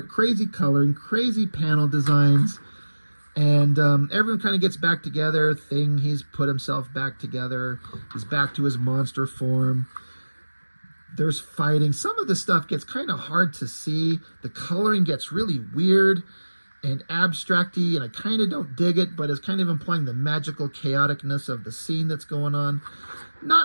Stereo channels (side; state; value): both; inverted; correlation -1.00